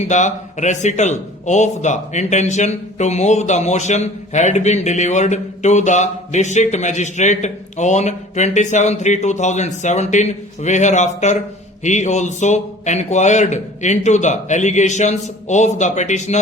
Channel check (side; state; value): both; normal; correlation 0.46